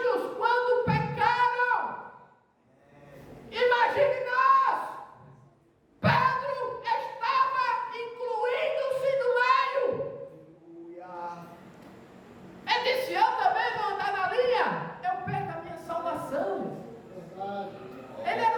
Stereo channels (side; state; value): both; identical; correlation 1.00